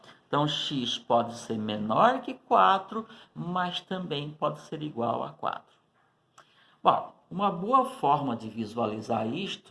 Então, X pode ser menor que 4, mas também pode ser igual a 4. Bom, uma boa forma de visualizar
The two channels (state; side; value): identical; both; correlation 1.00